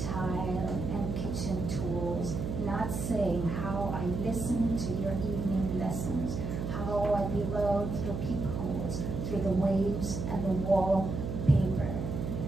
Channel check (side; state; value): right; noise; hum, 3 dB below the sound